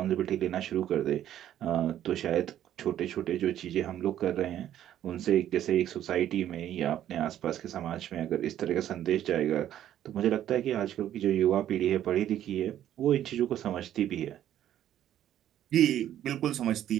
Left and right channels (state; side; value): quieter; left; 11.5 dB